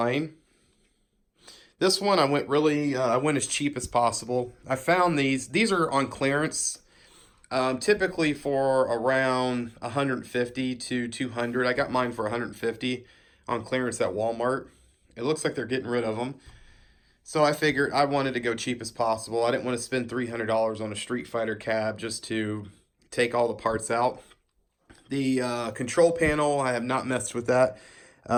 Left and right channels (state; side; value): identical; both; correlation 1.00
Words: This one I went as cheap as possible. I found these are on clearance. Typically for around 150 to 200. I got mine for 150 on clearance at Walmart. It looks like they're getting rid of them. So I figured I wanted to go cheap as possible. I didn't want to spend $300 on a Street Fighter cab just to take all the parts out. The control panel, I have not messed with that.